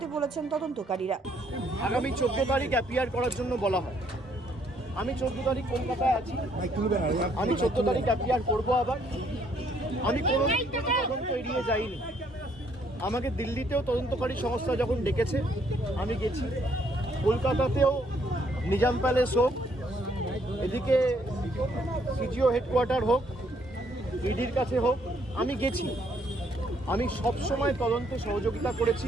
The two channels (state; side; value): normal; both; correlation 0.68